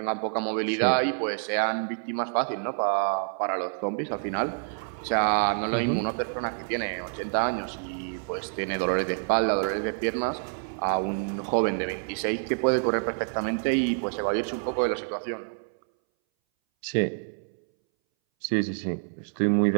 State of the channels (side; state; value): left; silent; 60 dB below the other